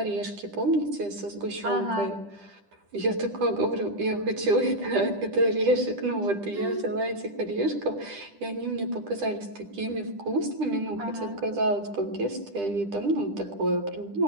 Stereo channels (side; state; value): left; late; 10 ms